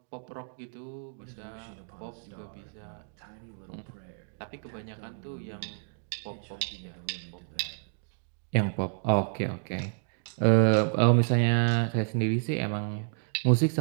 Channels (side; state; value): left; silent; digital silence